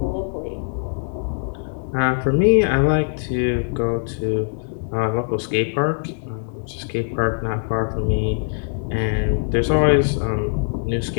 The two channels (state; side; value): silent; right; digital silence